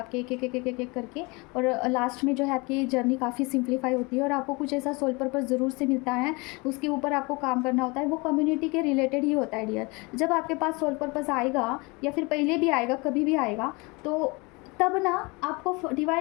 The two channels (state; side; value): quieter; right; 27.1 dB